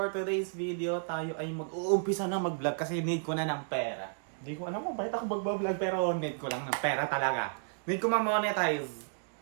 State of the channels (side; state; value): left; silent; digital silence